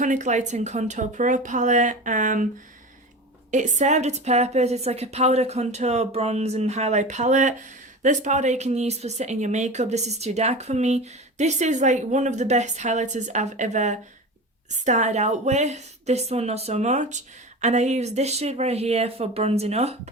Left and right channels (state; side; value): normal; both; correlation 0.30